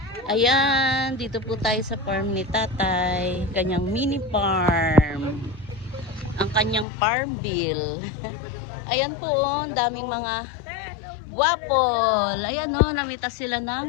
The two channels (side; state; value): right; drops out; at 6.9 s